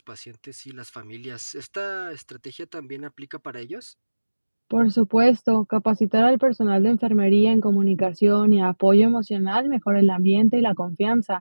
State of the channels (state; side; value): inverted; both; correlation -1.00